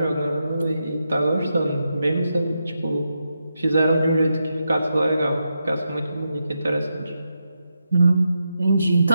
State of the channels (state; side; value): inverted; both; correlation -0.86